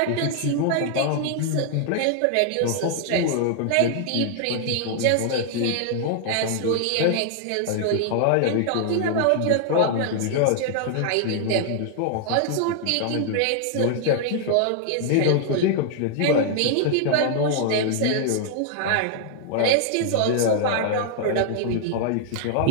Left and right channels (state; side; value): different; both; correlation 0.00